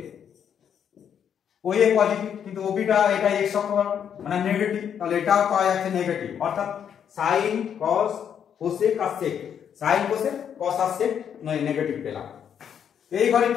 OA positive কিন্তু ওবিটা এটা x অক্ষ মানে নেগেটিভ, তাহলে এটাও পাওয়া যাচ্ছে নেগেটিভ, অর্থাৎ সাইন cos কোসেক আর সেক, সাইন কোসেক cos আর সেক নেগেটিভ পেলাম। এই ঘরে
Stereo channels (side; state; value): right; quieter; 8.4 dB